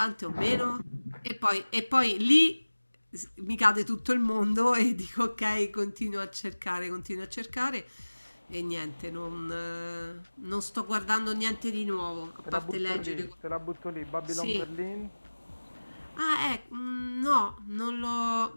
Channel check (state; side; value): inverted; both; correlation -1.00